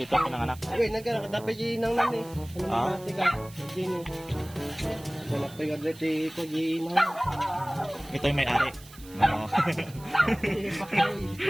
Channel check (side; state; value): right; noise; hiss, 21 dB below the sound